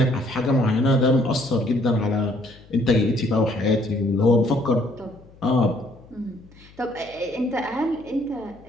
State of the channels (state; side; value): noise; left; hum, 25 dB below the sound